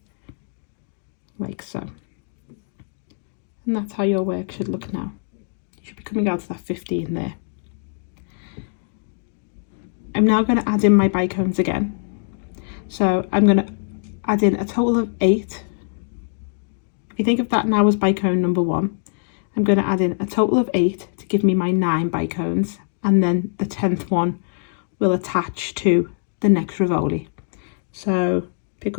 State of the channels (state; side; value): silent; right; digital silence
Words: like so. And that's how your work should look now. You should be coming out to that 15 there. I'm now going to add in my bicones again. So I'm going to add in a total of 8. If you think of that now as bicone number 1, I'm going to add in a total of 8 to give me my 9 bicones, and then the 10th one will attach to the next Rivoli. So pick